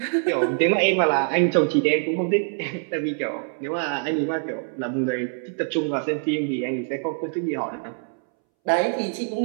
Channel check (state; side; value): silent; left; 62 dB below the other